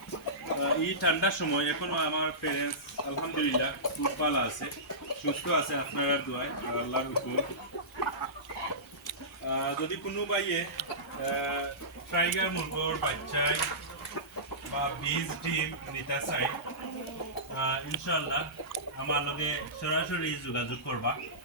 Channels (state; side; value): normal; both; correlation -0.20